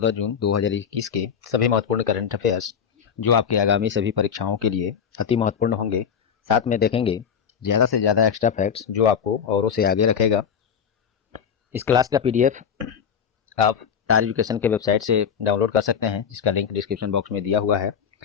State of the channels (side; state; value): right; quieter; 7.4 dB